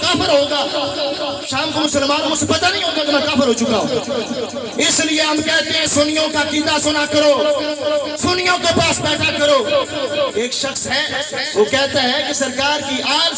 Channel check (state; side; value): identical; both; correlation 1.00